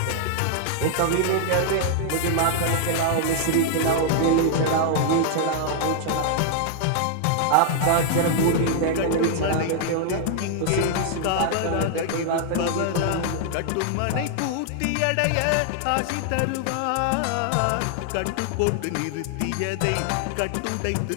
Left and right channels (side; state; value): both; different; correlation 0.00